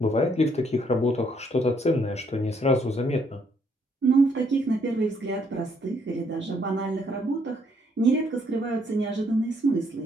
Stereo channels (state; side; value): normal; both; correlation 0.69